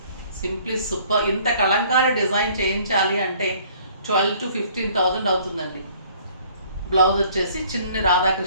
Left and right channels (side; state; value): both; inverted; correlation -0.57